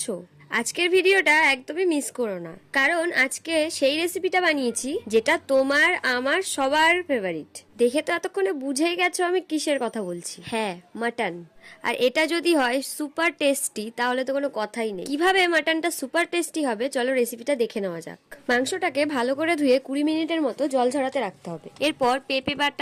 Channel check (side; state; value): both; identical; correlation 1.00